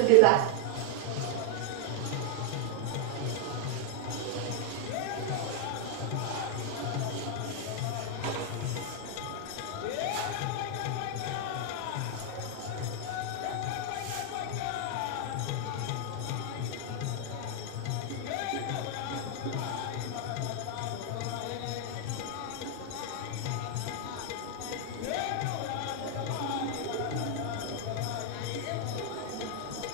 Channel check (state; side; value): different; both; correlation 0.00